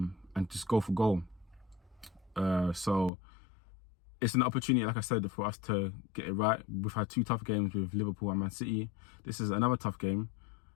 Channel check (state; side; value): drops out; right; at 3.1 s